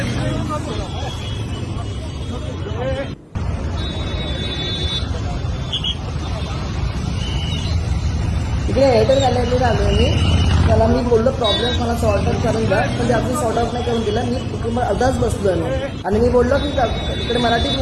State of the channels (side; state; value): both; identical; correlation 1.00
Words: इकडे एअरटेल गॅलरीला आलो मी. त्याला मी बोललो प्रॉब्लेम मला सॉर्ट आउट करून द्या, पण ते आपण सॉर्ट आउट नाही करून दिला. मी कुटुंब अर्धाच बसलो मी आणि मी बोललो की इकडे मराठीत